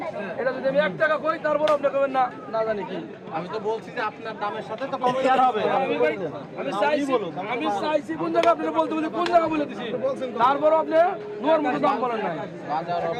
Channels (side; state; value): both; identical; correlation 1.00